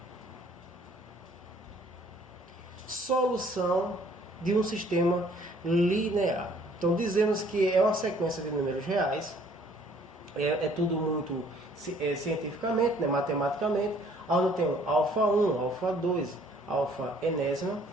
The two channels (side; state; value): both; normal; correlation 0.59